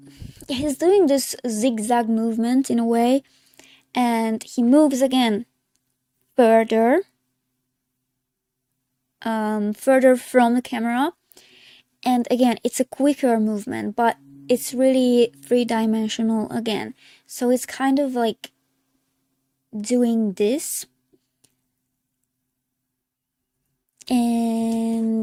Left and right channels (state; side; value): identical; both; correlation 1.00